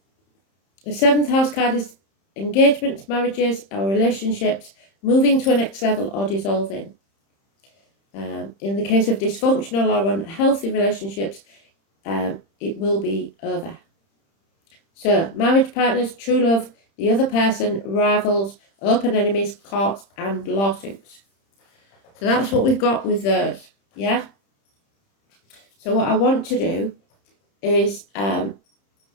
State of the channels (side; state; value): right; late; 30 ms